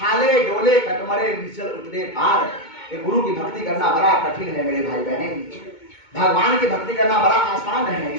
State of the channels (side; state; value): right; late; 2.2 ms